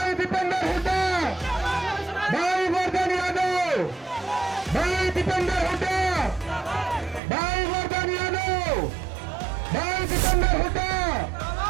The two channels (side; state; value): left; drops out; at 7.2 s